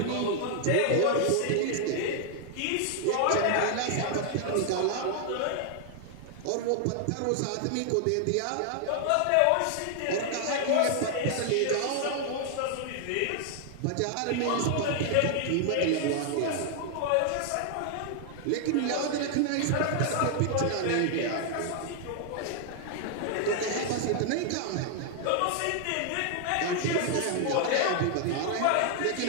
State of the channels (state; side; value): different; both; correlation 0.00